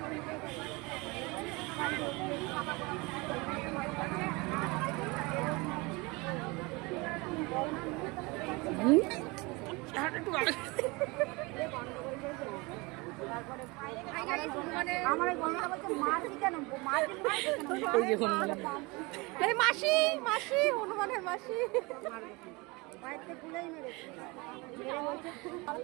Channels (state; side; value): quieter; left; 25.6 dB